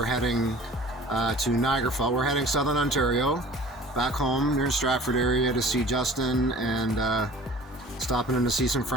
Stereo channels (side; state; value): both; normal; correlation 0.45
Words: heading to Niagara Falls. We're heading southern Ontario, back home near the Stratford area to see Justin, and stopping in to see some